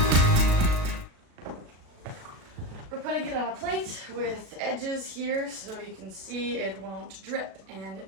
We're putting it on a plate with edges here so you can see it won't drip, and it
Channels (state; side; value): late; left; 37 ms